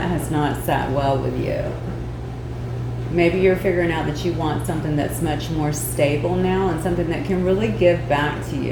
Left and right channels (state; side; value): identical; both; correlation 1.00